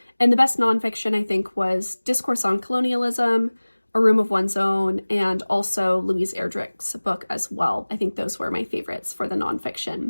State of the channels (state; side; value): inverted; both; correlation -1.00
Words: And the best nonfiction, I think, was Discourse on Colonialism, A Room of One's Own, and also Louise Erdrich's book as well. I think those were my favorites for the